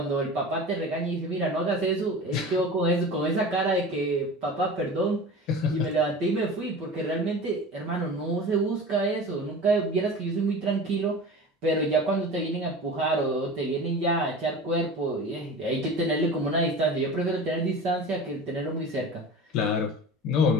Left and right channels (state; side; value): normal; both; correlation 0.35